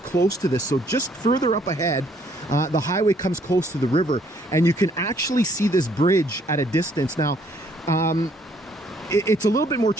close to this, so just further up ahead, the highway comes close to the river, and you can actually see this bridge at a distance. Now, it's a little bit more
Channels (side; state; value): both; normal; correlation 0.65